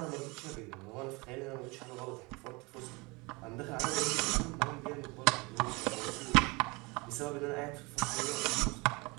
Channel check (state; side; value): quieter; left; 26.2 dB